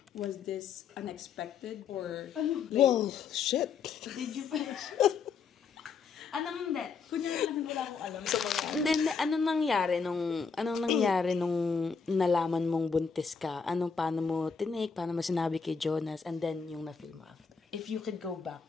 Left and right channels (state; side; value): quieter; right; 5.6 dB